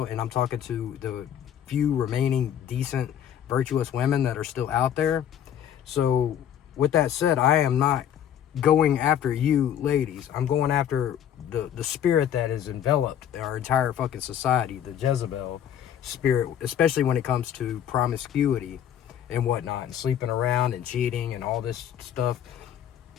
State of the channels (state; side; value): quieter; right; 9.7 dB